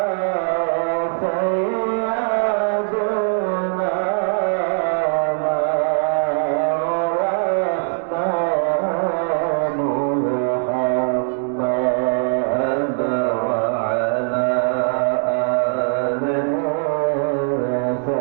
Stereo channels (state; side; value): silent; left; 56 dB below the other